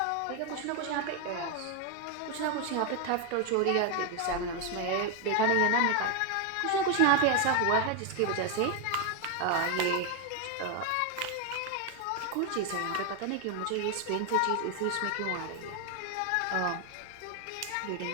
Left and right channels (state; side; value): different; both; correlation 0.01